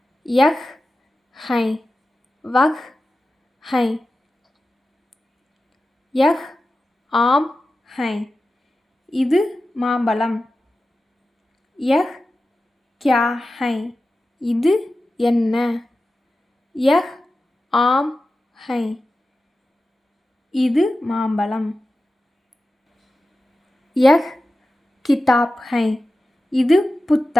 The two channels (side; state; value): both; normal; correlation 0.94